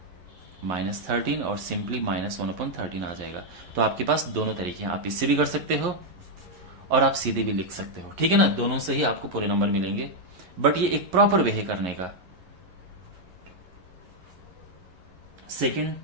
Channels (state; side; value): late; left; 11 ms